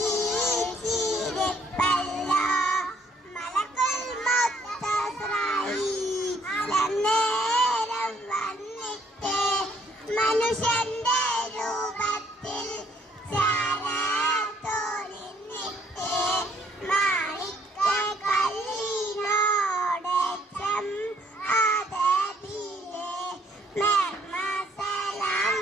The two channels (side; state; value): both; normal; correlation 0.65